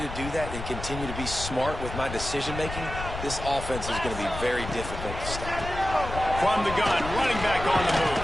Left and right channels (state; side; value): noise; left; rumble, 8 dB below the sound